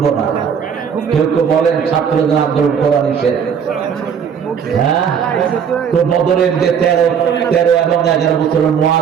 না। কেউ কেউ বলেন ছাত্রদের আন্দোলন করা নিষেধ। হ্যাঁ, তো বদরের যে 13 এবং 11 বছরের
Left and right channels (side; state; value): left; quieter; 7.4 dB